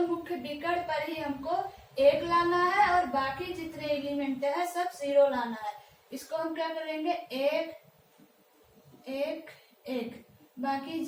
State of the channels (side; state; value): both; identical; correlation 1.00